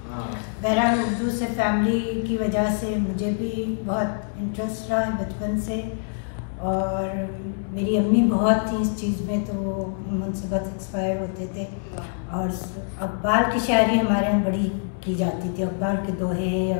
बहरहाल उर्दू से फैमिली की वजह से मुझे भी बहुत इंटरेस्ट रहा है बचपन से, और मेरी अम्मी बहुत थी इस चीज़ में, तो वो उनसे बहुत इंस्पायर होते थे। और अक़बाल की शायरी हमारे यहाँ बड़ी की जाती थी, अक़बाल के दोहे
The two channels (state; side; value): silent; right; 62 dB below the other